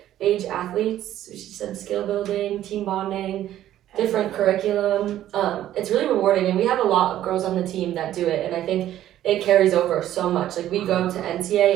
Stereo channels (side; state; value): left; quieter; 12.5 dB